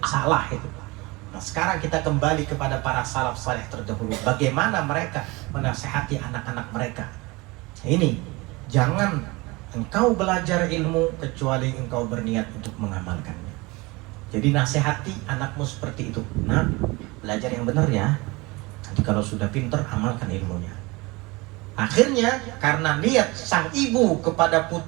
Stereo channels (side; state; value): left; quieter; 24.0 dB